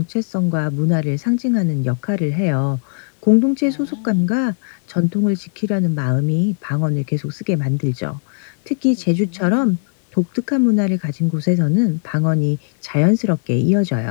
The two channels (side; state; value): right; silent; digital silence